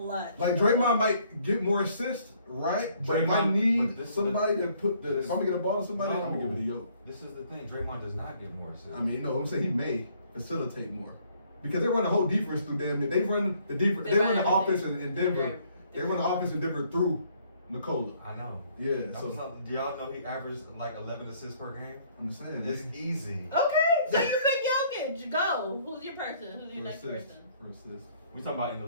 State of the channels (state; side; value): inverted; both; correlation -0.63